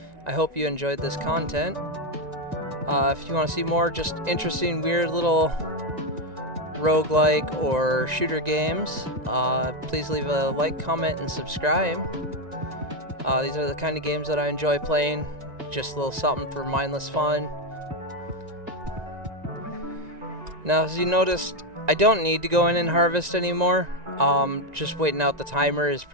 I hope you enjoyed this content. If you want to see more just interesting, weird little roguelike or shooter games, please leave a like, comment, and subscribe. These are the kind of games that I enjoy playing. Just a little something for mindless fun. Now, as you noticed, I don't need to go in and harvest anymore. Just waiting out the timer is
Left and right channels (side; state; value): left; late; 1.9 ms